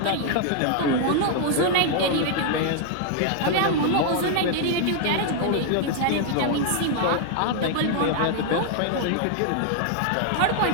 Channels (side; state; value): both; different; correlation 0.00